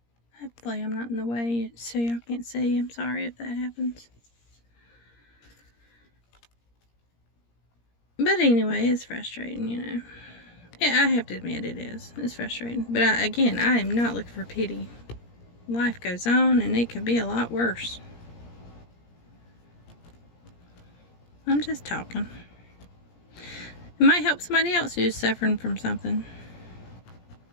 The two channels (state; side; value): late; right; 17 ms